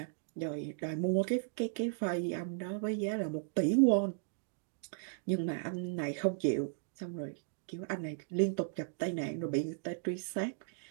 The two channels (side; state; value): left; silent; digital silence